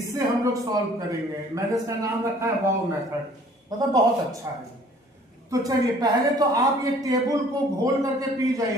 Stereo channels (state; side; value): normal; both; correlation 0.54